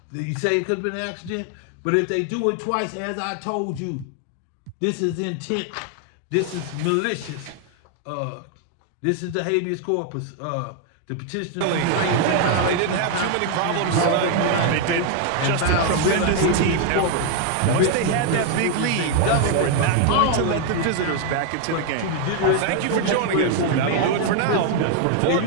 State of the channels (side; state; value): both; different; correlation 0.00